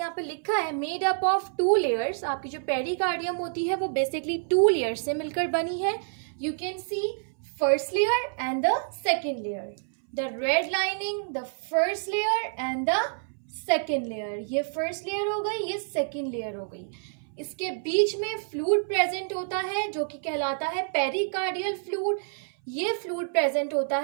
पे लिखा है made up of two layers. आपकी जो पेरिकार्डियम होती है वो बेसिकली टू लेयर्स से मिलकर बनी है. You can see first layer and the second layer, the red lining, the first layer and the second layer. ये फर्स्ट लेयर हो गई, ये सेकेंड लेयर हो गई. इसके बीच में फ्लूइड प्रेजेंट होता है जो कि कहलाता है पेरिकार्डियल फ्लूइड. ये फ्लूइड प्रेजेंट होता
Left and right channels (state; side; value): silent; left; 59 dB below the other